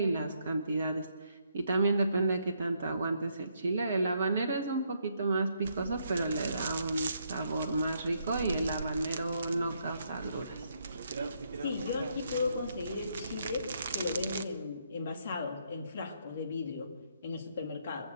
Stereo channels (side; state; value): both; inverted; correlation -0.74